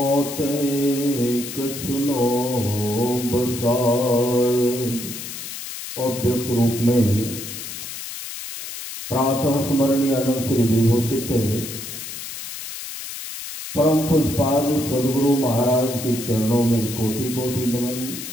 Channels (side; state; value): left; noise; hiss, 9 dB below the sound